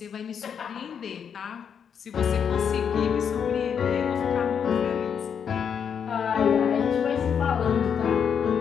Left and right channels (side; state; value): right; quieter; 7.5 dB